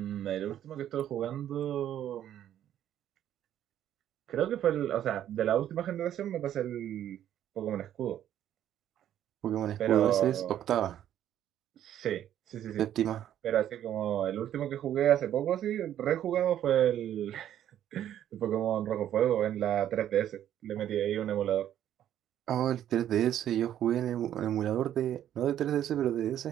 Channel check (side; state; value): left; quieter; 11.0 dB